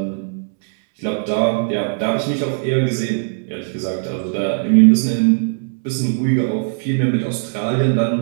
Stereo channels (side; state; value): left; silent; digital silence